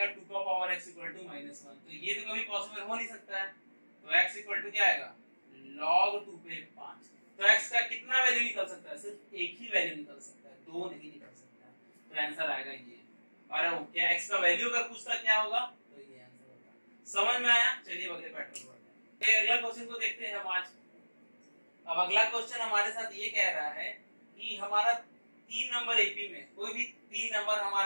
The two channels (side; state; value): both; inverted; correlation -1.00